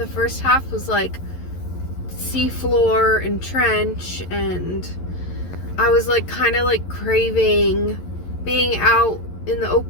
first half was like seafloor and trench, and I was like kind of like craving being out in the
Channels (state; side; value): late; right; 11 ms